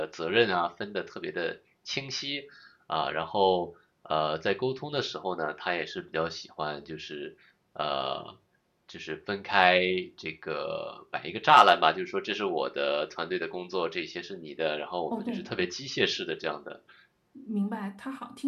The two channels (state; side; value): identical; both; correlation 1.00